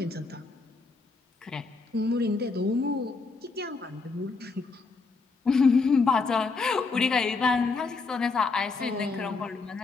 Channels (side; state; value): right; quieter; 4.2 dB